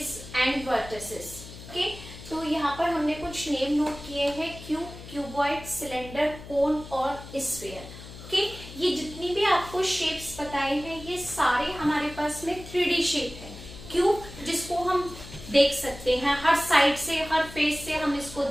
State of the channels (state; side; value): noise; left; hum, 14 dB below the sound